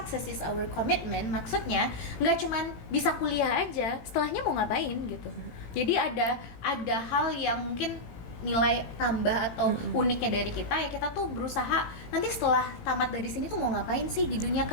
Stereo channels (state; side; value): late; right; 18 ms